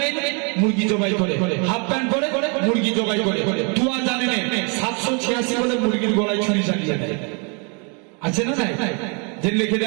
মুরগি জবাই করে, হাফ প্যান্ট পরে মুরগি জবাই করে, 2000 জানেন 786 বলে মুরগির গলায় ছুরি চালিয়ে দেয়, আছে না নাই? যে লিখে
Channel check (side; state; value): left; quieter; 35.2 dB